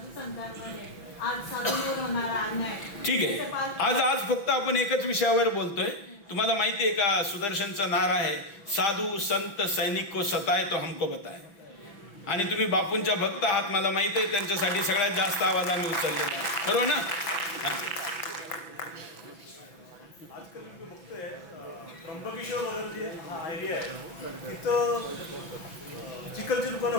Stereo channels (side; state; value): right; late; 6.1 ms